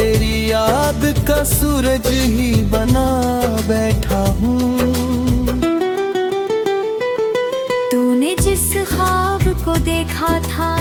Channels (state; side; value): identical; both; correlation 1.00